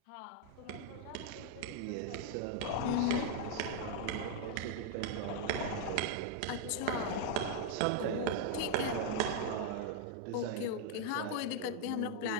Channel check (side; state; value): both; different; correlation 0.00